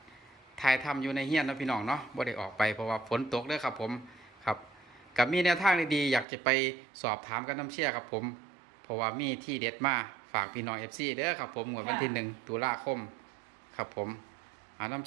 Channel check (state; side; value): drops out; left; at 6.2 s